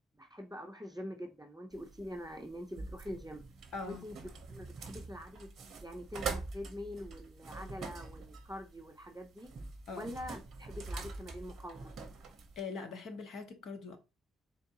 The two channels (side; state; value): both; normal; correlation 0.74